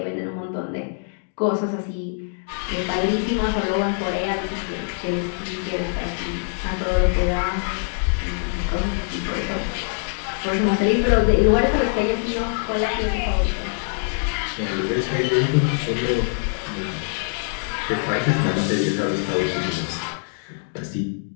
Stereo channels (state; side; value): silent; right; 61 dB below the other